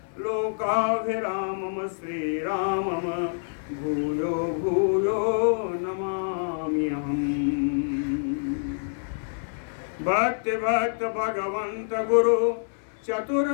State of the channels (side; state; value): right; silent; digital silence